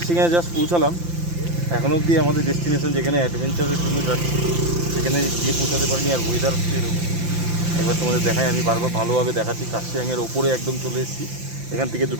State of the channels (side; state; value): left; late; 5.8 ms